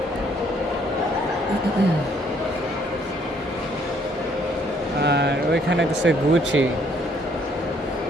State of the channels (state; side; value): normal; both; correlation 0.65